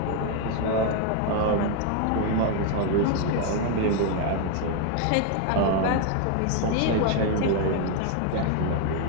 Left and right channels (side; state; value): both; different; correlation 0.01